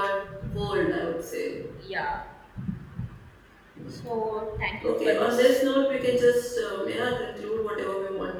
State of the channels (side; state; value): both; identical; correlation 1.00